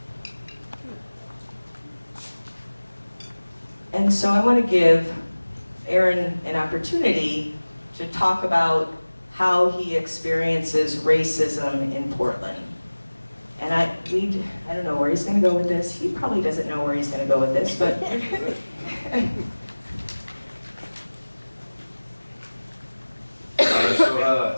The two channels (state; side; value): inverted; both; correlation -1.00